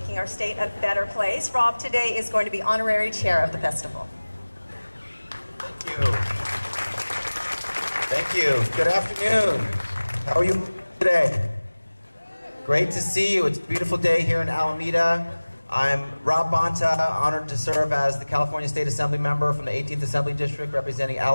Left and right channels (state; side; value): inverted; both; correlation -1.00